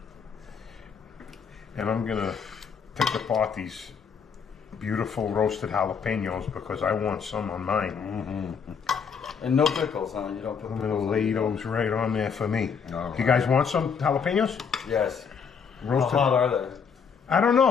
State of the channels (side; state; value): right; quieter; 6.4 dB